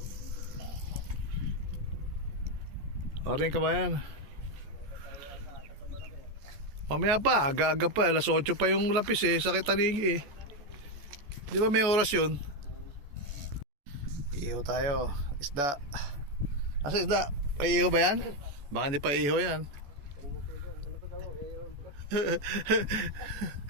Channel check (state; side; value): late; left; 14 ms